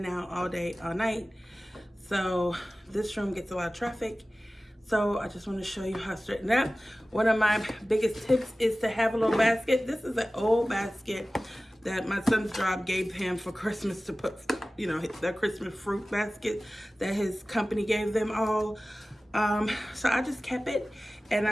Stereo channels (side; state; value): both; normal; correlation 0.97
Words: out all day, all night. So this room gets a lot of traffic. So I just want to show you how to straighten up. One of my biggest tips is to have a little basket. This is an old basket that my son's job gave him for Christmas to put, you know, their Christmas fruit basket that his company gave them all. So I just kept it and